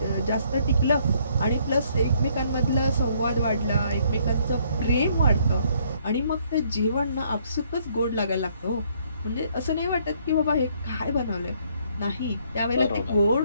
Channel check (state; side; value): inverted; both; correlation -0.66